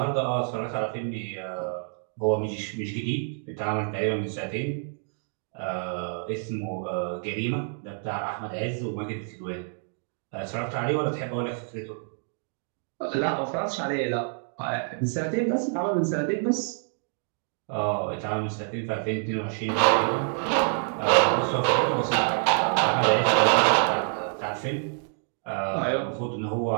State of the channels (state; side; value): silent; left; 60 dB below the other